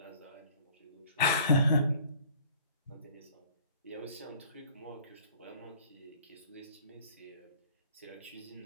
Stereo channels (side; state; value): both; inverted; correlation -0.52